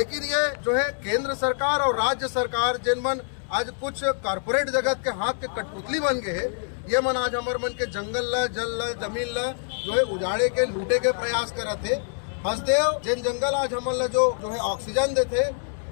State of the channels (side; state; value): right; silent; digital silence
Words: ये जो है केंद्र सरकार और राज्य सरकार जिन मन आज कुछ कॉर्पोरेट जगत के हाथ के कठपुतली बन गए है, ये मन आज हमार मन के जंगल ला, जल ला, जमीन ला जो है उजाड़े के, लूटे के प्रयास करते। हसदेव जिन जंगल आज हमारे जो है ऑक्सीजन देते,